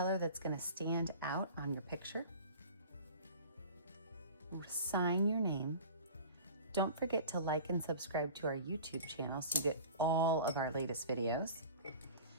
that's going to stand out on your picture. sign your name. Don't forget to like and subscribe to our YouTube channel so you get all of our latest videos.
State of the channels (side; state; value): both; inverted; correlation -0.40